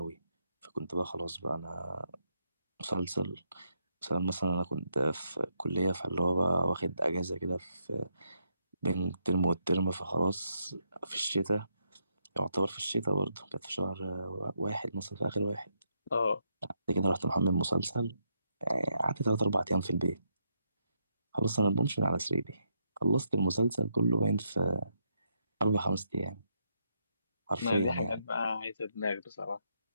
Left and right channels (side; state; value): both; inverted; correlation -0.78